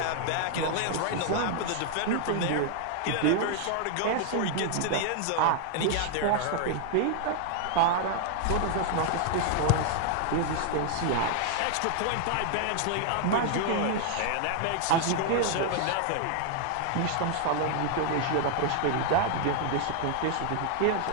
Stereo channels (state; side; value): different; both; correlation 0.00